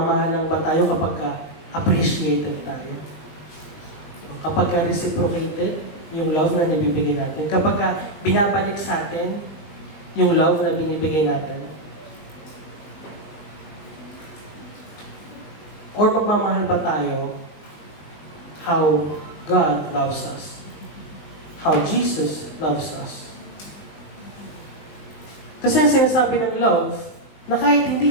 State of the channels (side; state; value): right; late; 20 ms